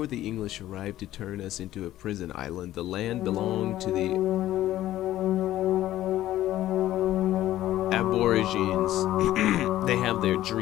the English arrived to turn us into a prison island, the land belonged to the Aborigines. They have their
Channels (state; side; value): quieter; right; 14.0 dB